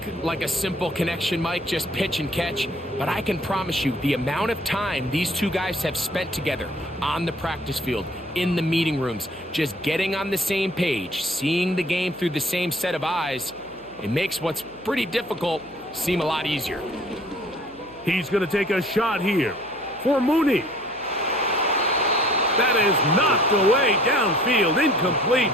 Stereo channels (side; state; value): left; noise; hum, 26 dB below the sound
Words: like a simple connection, Mike, just pitch and catch, but I can promise you the amount of time these two guys have spent together on the practice field, in the meeting rooms, just getting on the same page, seeing the game through the same set of eyes, it makes what's pretty difficult seem a lot easier. He's going to take a shot here for Mooney. That is knocked away downfield, incomplete.